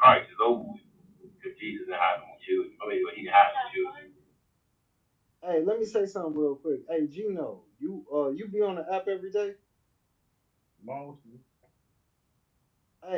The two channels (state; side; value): identical; both; correlation 1.00